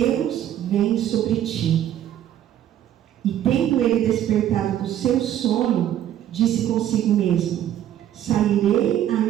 vêm sobre ti. E tendo ele despertado do seu sono, disse consigo mesmo: sairei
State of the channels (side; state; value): left; quieter; 11.3 dB